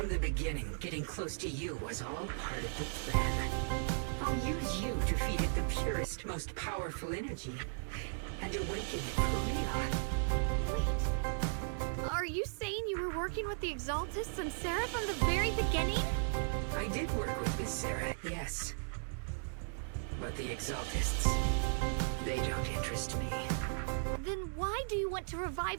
the beginning, getting close to you was all part of the plan. I'll use you to feed it the purest, most powerful energy, and awaken it for real. Wait. Are you saying you were working with the Exaltists and Sarah from the very beginning? I did work with Miss Sarah, yes. But the Exaltists, they don't interest me. Then why do you want to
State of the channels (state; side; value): silent; left; digital silence